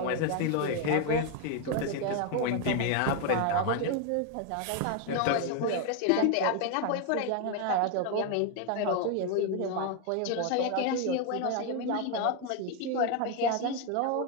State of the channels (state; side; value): different; both; correlation 0.01